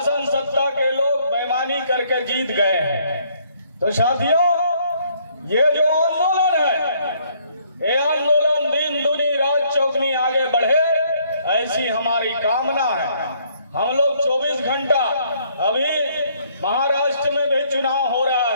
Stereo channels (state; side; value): inverted; both; correlation -0.66